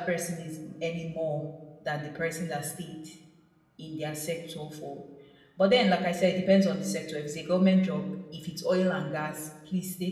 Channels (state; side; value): identical; both; correlation 1.00